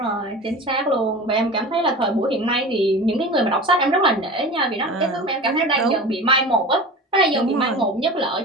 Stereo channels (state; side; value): normal; both; correlation 0.34